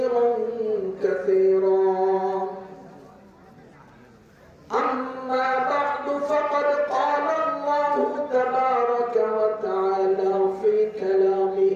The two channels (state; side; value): identical; both; correlation 1.00